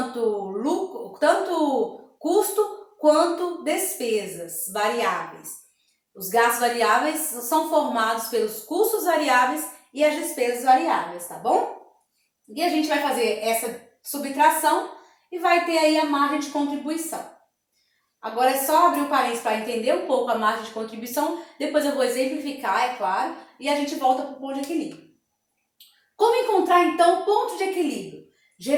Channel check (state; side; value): identical; both; correlation 1.00